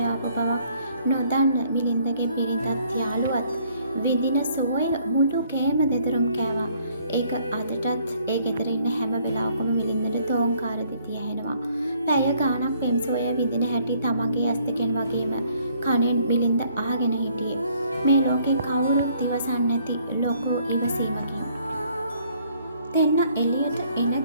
ආපු බවක් නොදන්න මිලින්දගේ බිරිඳත් යාළුවත් විඳින සෝය මුළු කෑම දෙතරම් කෑවා. ඒක අදටත් ඒ ගෙදර ඉන්න හැම වෙලාවකම මිලින්දට තෝංකාර දිතිය ඇහෙනවා. පැය ගාණක් පෙම් සෝය විඳින හැටි තමන්ගේ ඇස් දෙකෙන් වගේම කනෙන් මිලින්ද අහගෙන හිටියේ. මේ ලෝකේ කවුරුත් ඉවසන්නේ නැති ලොකු ඉවසීමකින්. දෙන්න එළියට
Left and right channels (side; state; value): both; inverted; correlation -0.64